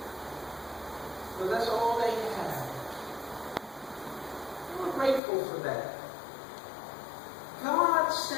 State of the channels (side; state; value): right; drops out; at 5.2 s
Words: So that's all they had. They were grateful for that. God